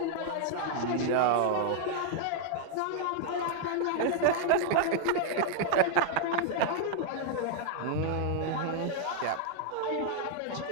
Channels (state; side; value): different; both; correlation -0.01